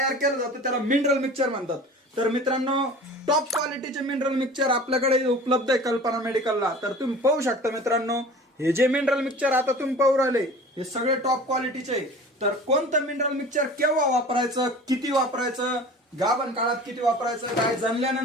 केलं जातं त्याला मिनरल मिक्सचर म्हणतात। तर मित्रांनो, टॉप क्वालिटीचे मिनरल मिक्सचर आपल्याकडे उपलब्ध आहे कल्पना मेडिकलला। तर तुम्ही पाहू शकता मित्रांनो, हे जे मिनरल मिक्सचर आता तुम्ही पाहू राहिले हे सगळे टॉप क्वालिटीचे आहे। तर कोणतं मिनरल मिक्सचर केव्हा वापरायचं, किती वापरायचं, गाभण काळात किती वापरायचं, गाय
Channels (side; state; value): both; normal; correlation 0.41